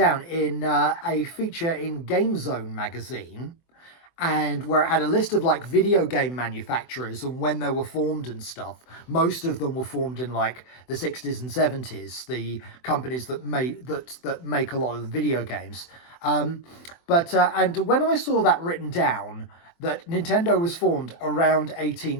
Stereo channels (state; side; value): late; right; 24 ms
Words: in a feature in Game Zone magazine, and where it had a list of like video game manufacturers and when they were formed and stuff. Most of them were formed in like the 60s and 70s, the companies that make a lot of the video games. And when I saw that written down, that Nintendo was formed around